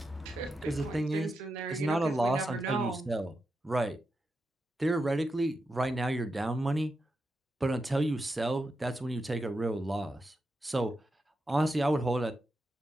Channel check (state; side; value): normal; both; correlation 0.87